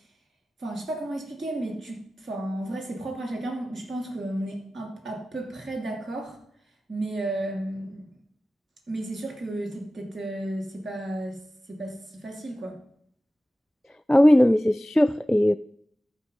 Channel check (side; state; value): both; normal; correlation 0.96